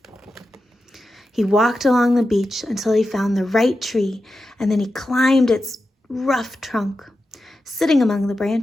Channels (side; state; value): both; normal; correlation 0.91